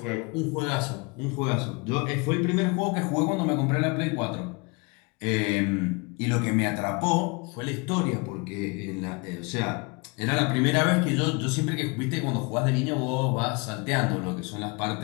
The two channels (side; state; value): right; quieter; 29.6 dB